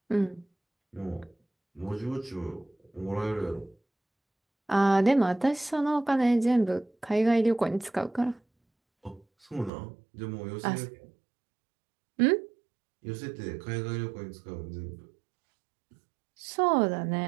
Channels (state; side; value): drops out; left; at 9.7 s